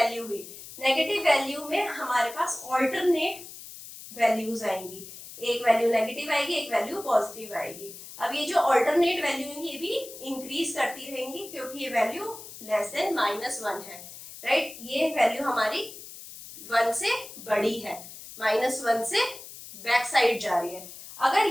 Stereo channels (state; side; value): noise; left; hiss, 14 dB below the sound